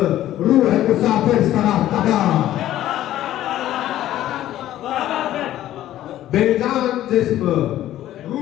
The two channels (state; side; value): quieter; right; 13.3 dB